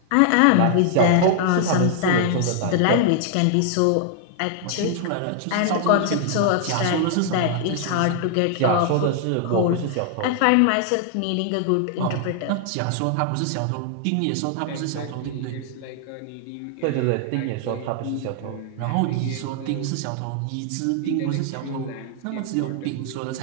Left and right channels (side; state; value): both; different; correlation 0.00